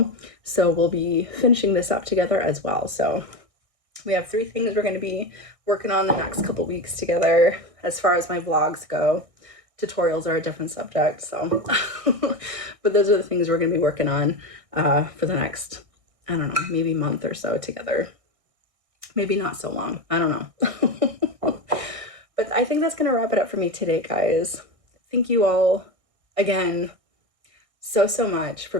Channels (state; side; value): late; left; 1.6 ms